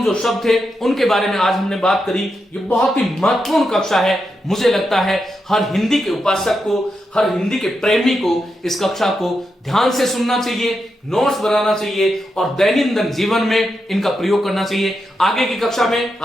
जो शब्द थे उनके बारे में आज हमने बात करी। ये बहुत ही महत्वपूर्ण कक्षा है, मुझे लगता है हर हिंदी के उपासक को, हर हिंदी के प्रेमी को इस कक्षा को ध्यान से सुनना चाहिए, नोट्स बनाना चाहिए और दैनंदिन जीवन में इनका प्रयोग करना चाहिए। आगे की कक्षा में,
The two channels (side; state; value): both; normal; correlation 0.86